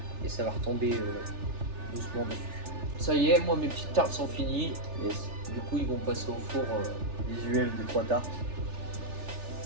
et ça va retomber doucement dessus. Ça y est, moi, mes petites tartes sont finies. Yes. Du coup, ils vont passer au four. Visuel des 3 tartes.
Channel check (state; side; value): late; left; 3.4 ms